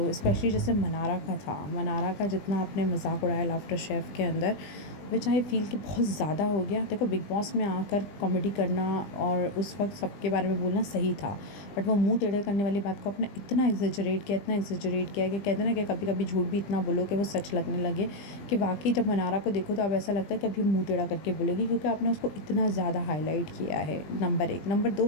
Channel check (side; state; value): right; late; 20 ms